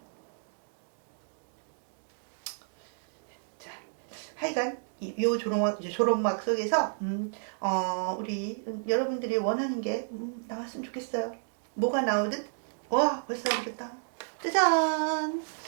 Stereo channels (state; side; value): silent; left; digital silence